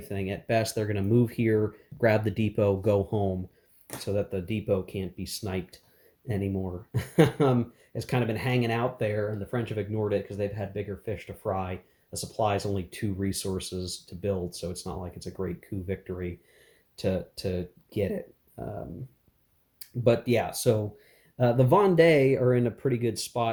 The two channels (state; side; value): identical; both; correlation 1.00